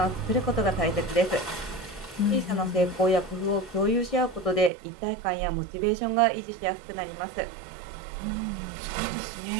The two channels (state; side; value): drops out; left; at 4.7 s